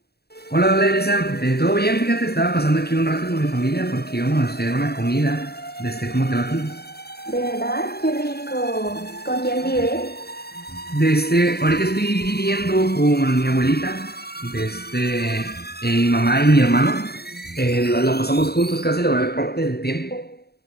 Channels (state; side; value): late; right; 0.47 ms